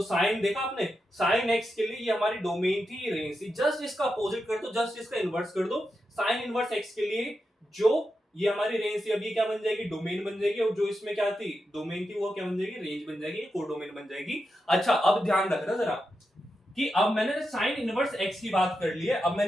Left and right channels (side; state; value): both; normal; correlation 0.88